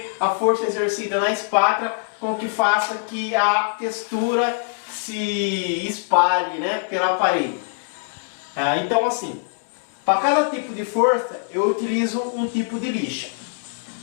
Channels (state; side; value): silent; right; digital silence